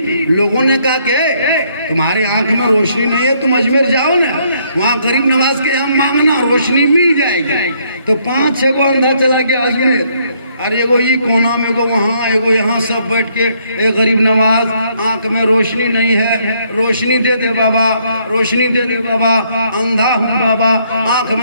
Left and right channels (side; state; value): both; inverted; correlation -0.70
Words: लोगों ने कहा कि तुम्हारी आंख में रोशनी नहीं है, तुम अजमेर जाओ ना, वहाँ गरीब नवाज के यहाँ मांगना, रोशनी मिल जाएगी। तो 5-6 को अंधा चला गया अजमेर, और एगो ये कोना में, एगो वहाँ, एगो यहाँ, सब बैठ के ए गरीब नवाज, आंख में रोशनी नहीं है, रोशनी दे दे बाबा, रोशनी दे दे बाबा, अंधा हूँ बाबा, आंख